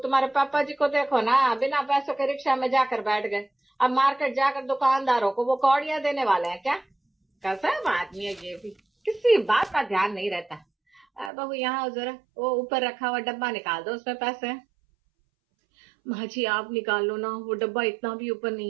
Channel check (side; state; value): left; drops out; at 11.3 s